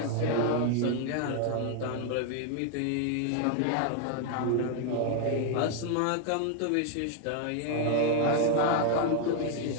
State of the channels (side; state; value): both; different; correlation 0.00